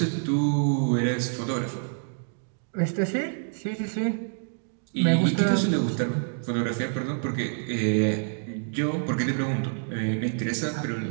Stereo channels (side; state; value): left; silent; digital silence